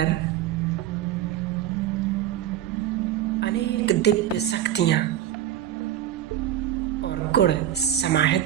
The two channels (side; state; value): left; quieter; 11.2 dB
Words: अनेक दिव्य शक्तियां और गुण